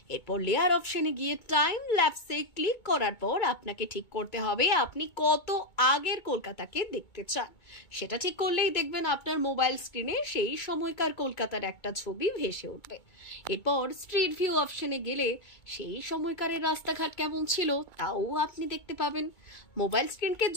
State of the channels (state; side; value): late; right; 2.2 ms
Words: এরপর লেয়ার অপশনে গিয়ে টাইম ল্যাপসে ক্লিক করার পর আপনাকে ঠিক করতে হবে আপনি কত আগের কলকাতাকে দেখতে চান। সেটা ঠিক করলেই দেখবেন আপনার মোবাইল স্ক্রিনে সেই সময়কার কলকাতার একটা ছবি ভেসে উঠবে। এরপর স্ট্রিট ভিউ অপশনে গেলে সেই সময়কারের রাস্তাঘাট কেমন ছিল তাও আপনি দেখতে পাবেন। মোবাইল স্ক্রিনকে